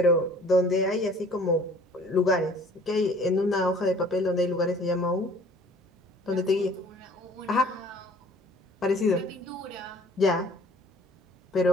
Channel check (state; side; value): normal; both; correlation 0.52